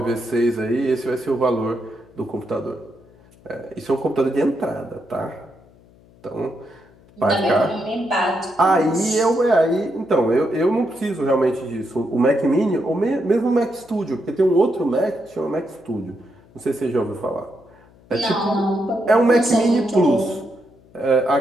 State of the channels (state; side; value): noise; left; hum, 27 dB below the sound